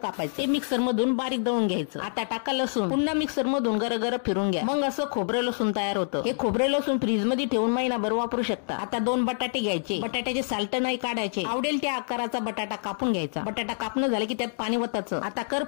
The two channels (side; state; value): right; silent; 60 dB below the other